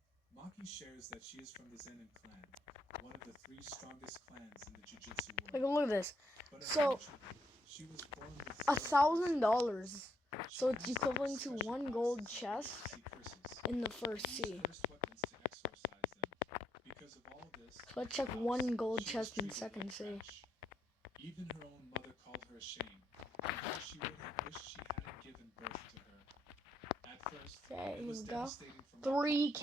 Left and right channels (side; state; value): both; normal; correlation 0.76